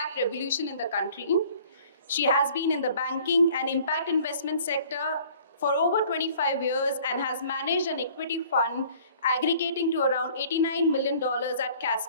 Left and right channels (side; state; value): both; inverted; correlation -0.52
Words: revolution in the country. She has been in the banking and impact investment sector for over 25 years and has managed an equity fund aggregating to around $89 million at